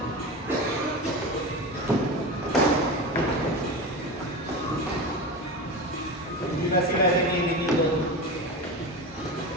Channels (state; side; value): normal; both; correlation 0.25